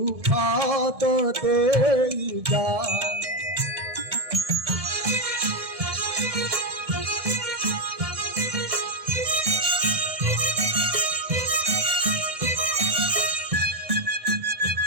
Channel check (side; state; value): left; late; 1.7 ms